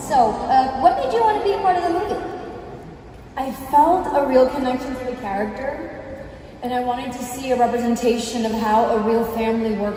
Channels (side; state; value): both; identical; correlation 1.00